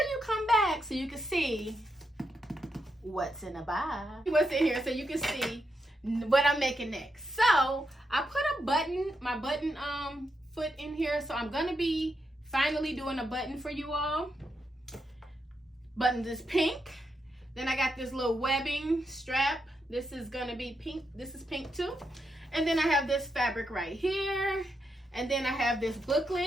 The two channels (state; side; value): normal; both; correlation 0.83